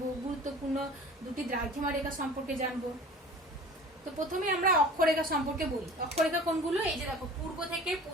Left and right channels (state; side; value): normal; both; correlation 0.42